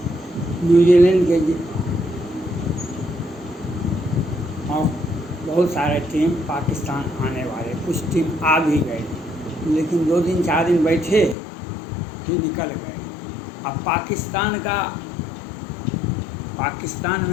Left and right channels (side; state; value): right; drops out; at 11.4 s